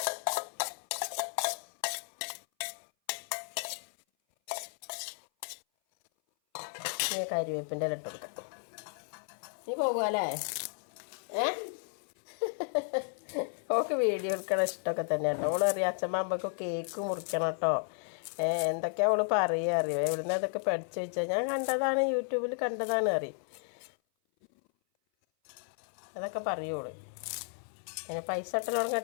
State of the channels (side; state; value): right; silent; 56 dB below the other